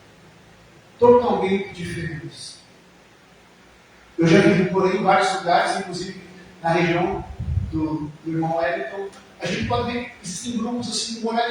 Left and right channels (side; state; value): both; identical; correlation 1.00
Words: Totalmente diferentes. Eu já vivi por aí em vários lugares, inclusive na região do irmão Wellington. A gente pode ver que existem grupos assim de